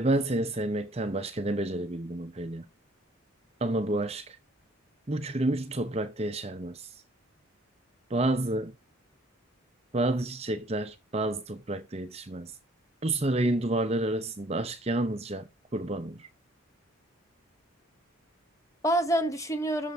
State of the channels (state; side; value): normal; both; correlation 0.60